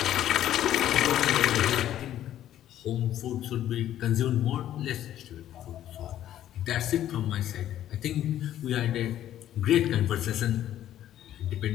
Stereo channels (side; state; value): right; quieter; 11.9 dB